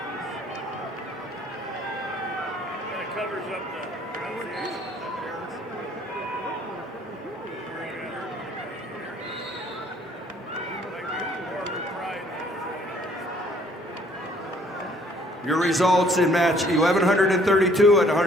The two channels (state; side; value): normal; both; correlation 0.60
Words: Your results in match 1,132 at